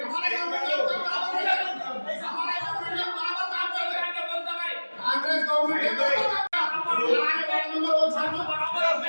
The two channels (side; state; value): both; inverted; correlation -1.00